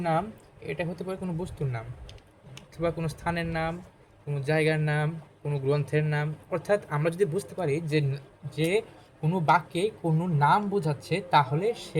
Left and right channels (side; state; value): both; identical; correlation 1.00